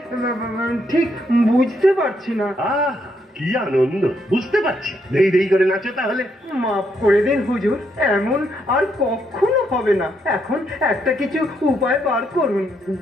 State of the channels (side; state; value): both; normal; correlation 0.76